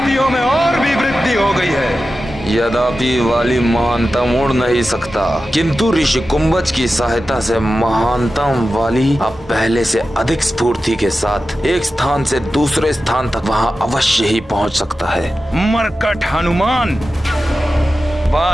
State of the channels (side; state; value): both; normal; correlation 0.93